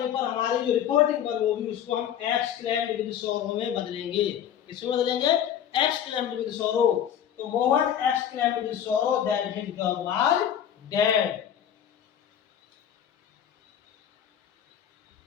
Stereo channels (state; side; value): quieter; right; 9.6 dB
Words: पर हमारी जो रिपोर्टिंग वर्ब होगी उसको हम एक्सक्लेम्ड विद सोरो में बदलेंगे। इसमें बदलेंगे एक्सक्लेम्ड विद सोरो। तो मोहन एक्सक्लेम्ड विद सोरो that his dog was dead.